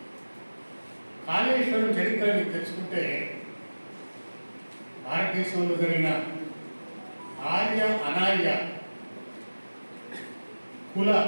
కాళేశ్వరం చరిత్రని తెలుసుకుంటే భారతదేశంలో జరిగిన ఆర్య అనార్య కుల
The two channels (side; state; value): both; inverted; correlation -1.00